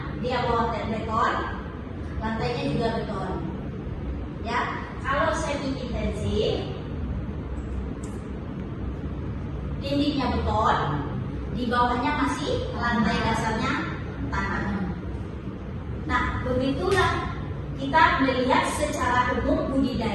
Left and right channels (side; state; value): both; identical; correlation 1.00